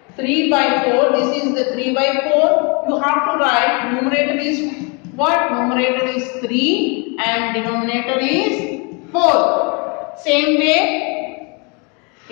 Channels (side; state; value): right; quieter; 32.2 dB